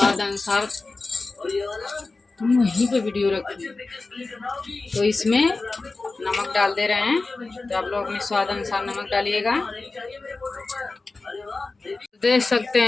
अनुसार, तुम वहीं पे वीडियो रखो, तो इसमें नमक डाल दे रहे हैं। तो आप लोग अपने स्वाद अनुसार नमक डालिएगा। देख सकते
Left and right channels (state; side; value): quieter; right; 3.6 dB